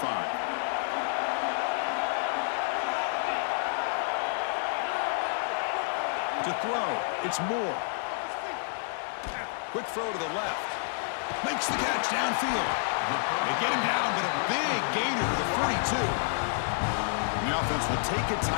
To throw, it's Moore. Quick throw to the left. Makes the catch downfield. They get him down, but a big gainer to the 42. And the offense will take a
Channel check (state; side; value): silent; right; digital silence